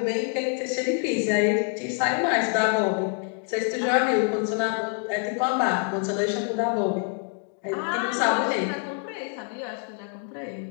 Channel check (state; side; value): quieter; right; 39.5 dB